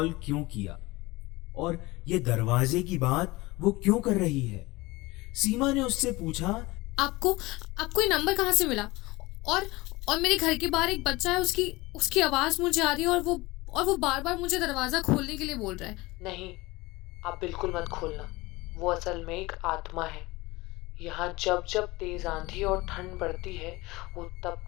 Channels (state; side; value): quieter; right; 21.5 dB